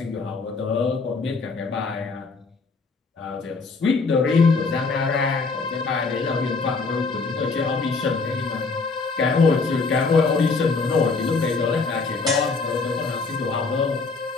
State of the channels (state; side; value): quieter; right; 4.3 dB